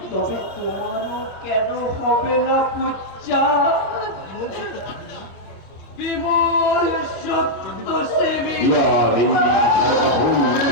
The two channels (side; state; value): right; late; 26 ms